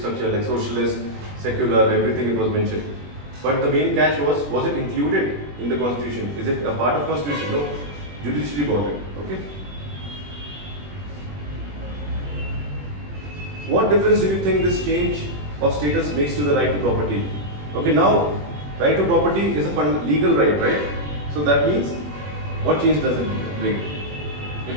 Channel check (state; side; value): late; left; 20 ms